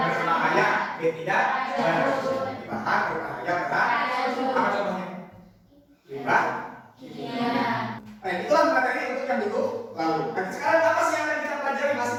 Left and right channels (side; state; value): both; identical; correlation 1.00